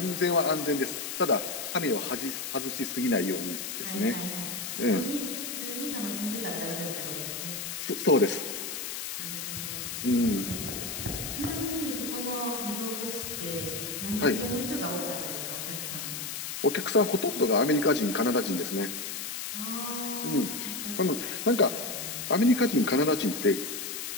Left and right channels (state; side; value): noise; left; hiss, 5 dB below the sound